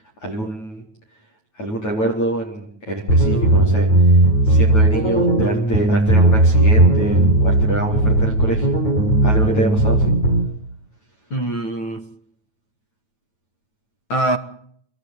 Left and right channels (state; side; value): late; right; 9.3 ms